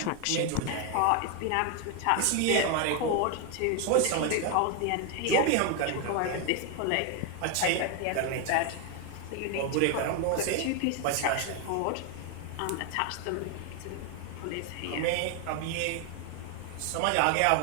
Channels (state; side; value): different; both; correlation 0.01